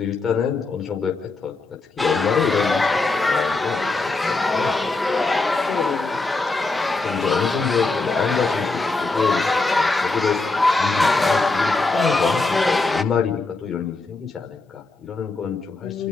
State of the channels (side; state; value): right; quieter; 3.5 dB